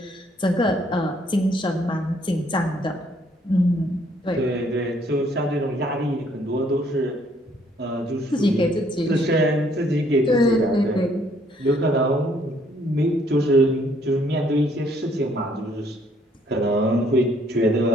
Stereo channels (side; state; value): both; normal; correlation 0.65